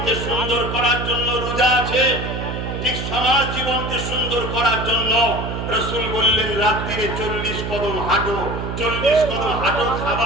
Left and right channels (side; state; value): right; noise; hum, 4 dB below the sound